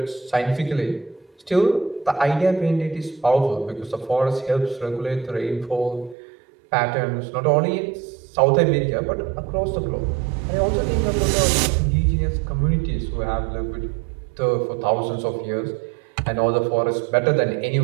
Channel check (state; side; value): drops out; left; at 6.2 s